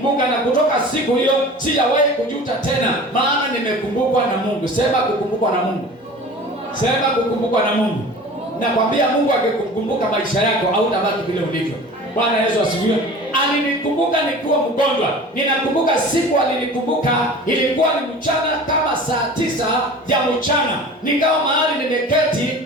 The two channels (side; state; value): both; normal; correlation 0.39